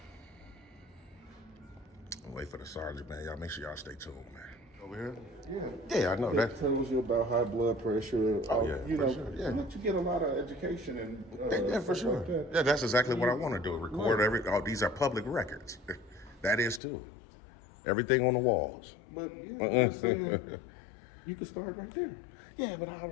Wait for the sergeant, man. Y'all make sure y'all stay tuned, man. Over here? Yeah, I know that. It tells you about high blood pressure. Oh, yeah, you for know, sure, yeah. let you get a lot of education and Yeah, for sure. Like that. Yeah, that's exactly what I want to do. Record these are public records. That is too. Everything on the walls. But I'm saying, you can start right there. Yeah, but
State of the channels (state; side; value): drops out; right; at 16.8 s